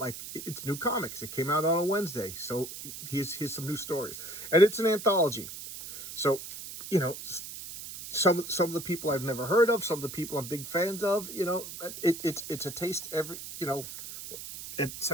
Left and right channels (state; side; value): noise; right; hiss, 10 dB below the sound